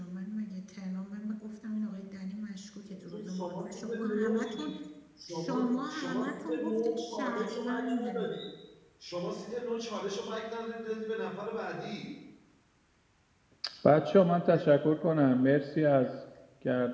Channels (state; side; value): identical; both; correlation 1.00